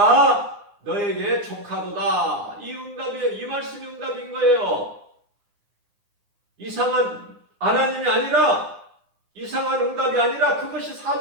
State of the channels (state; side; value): late; left; 9.8 ms